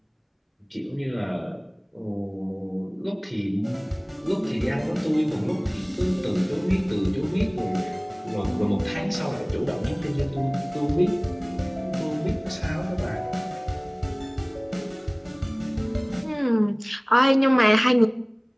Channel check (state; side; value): identical; both; correlation 1.00